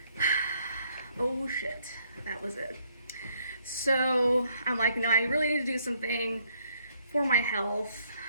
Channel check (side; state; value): both; inverted; correlation -0.69